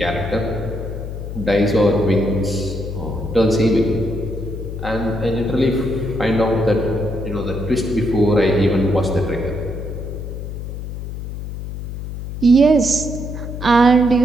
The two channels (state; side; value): noise; left; hum, 8 dB below the sound